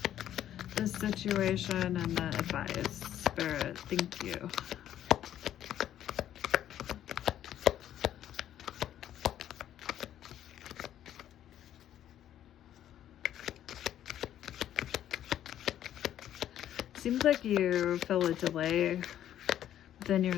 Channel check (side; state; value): right; quieter; 11.3 dB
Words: this situation and the advice. Spirit, thank you. Seems like you feel a delay within